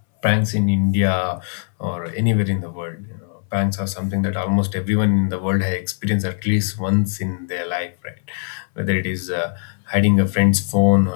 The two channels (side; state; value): right; silent; 64 dB below the other